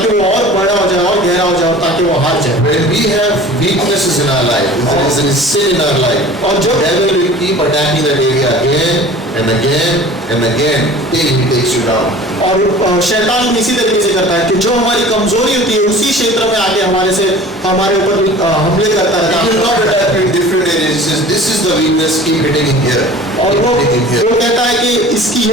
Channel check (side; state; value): both; normal; correlation 0.43